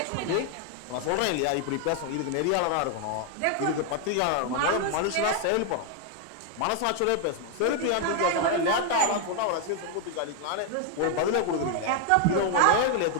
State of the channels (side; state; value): both; different; correlation 0.01